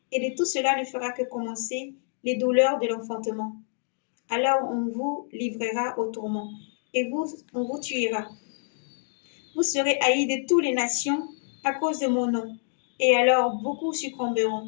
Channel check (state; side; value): silent; right; digital silence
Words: Et de tout cela ne fera que commencer les douleurs de l'enfantement. Alors on vous livrera au tourment, et on vous tuera. Vous serez haïs de toutes les nations à cause de mon nom. Et alors beaucoup